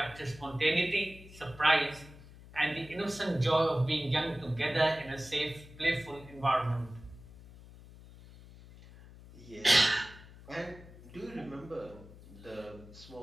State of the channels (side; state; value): left; noise; hum, 19 dB below the sound